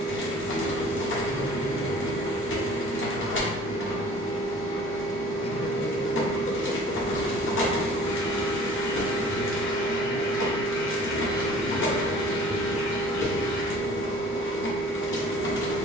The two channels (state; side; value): normal; both; correlation 0.49